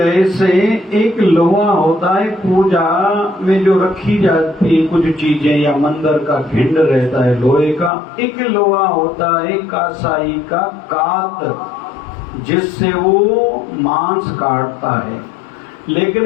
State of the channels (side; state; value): right; drops out; at 7.9 s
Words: एक लोहा होता है पूजा में जो रखी जाती है कुछ चीजें, या मंदिर का भिंड रहता है लोहे का, एक लोहा होता है कासाई का कात जिससे वो मांस काटता है।